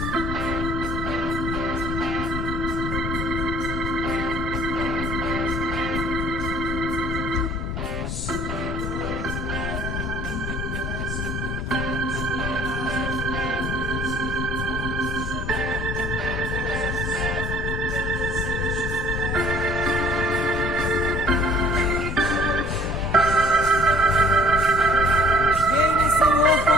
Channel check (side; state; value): left; noise; rumble, 5 dB below the sound